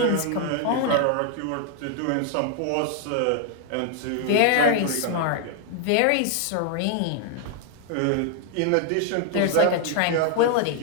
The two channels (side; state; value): both; different; correlation 0.00